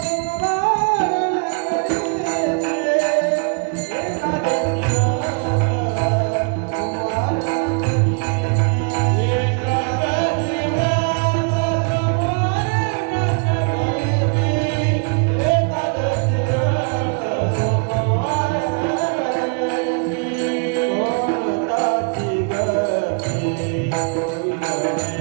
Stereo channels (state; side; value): quieter; left; 38.7 dB